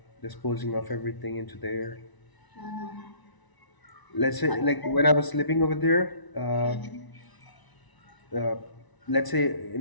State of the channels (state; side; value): late; right; 1.0 ms